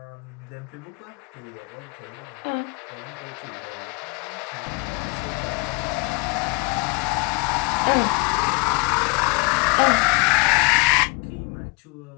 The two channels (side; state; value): right; quieter; 28.5 dB